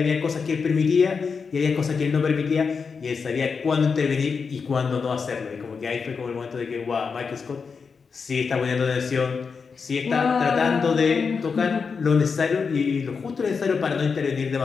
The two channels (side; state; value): right; quieter; 5.4 dB